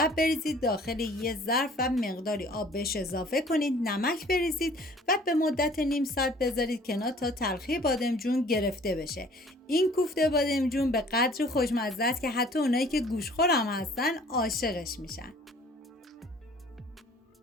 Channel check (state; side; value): normal; both; correlation 0.52